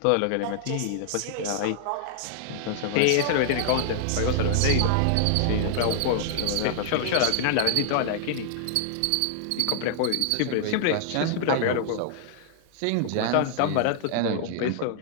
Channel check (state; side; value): different; both; correlation -0.01